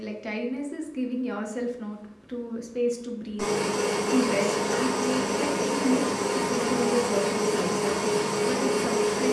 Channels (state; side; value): identical; both; correlation 1.00